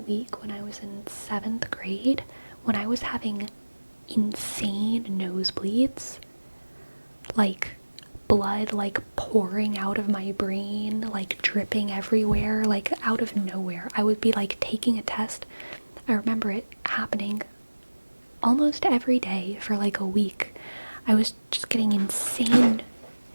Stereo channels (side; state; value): both; inverted; correlation -1.00